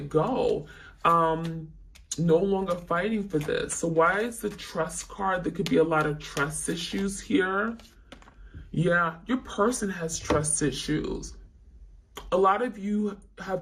go. No longer fighting for this. So why is the trust card? There could be a lot of trust issues here. Yeah, your person has trust issues. A lot of you have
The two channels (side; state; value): both; identical; correlation 1.00